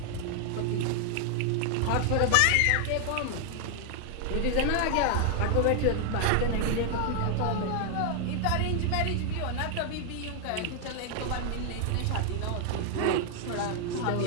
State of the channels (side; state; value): both; different; correlation 0.00